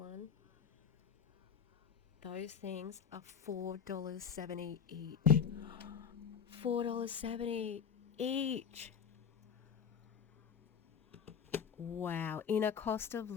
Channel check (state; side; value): quieter; right; 7.2 dB